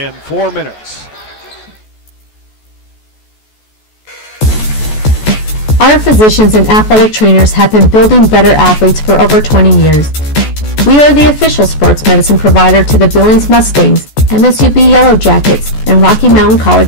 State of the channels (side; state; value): right; late; 14 ms